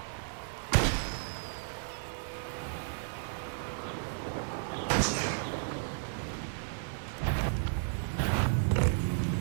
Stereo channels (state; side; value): silent; left; 55 dB below the other